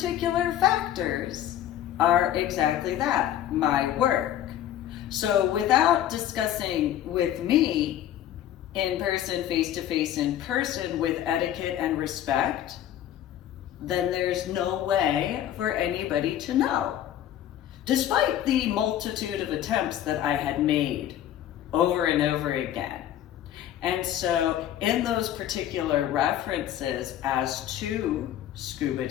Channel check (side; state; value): right; quieter; 11.5 dB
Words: factors are exactly that, my work. So without discussing with me in person, face-to-face in person, with etiquette and respect, then there's no way for anybody to know. Despite the multitude of attempts that I had made over and over again. And so in those particular references as to scuba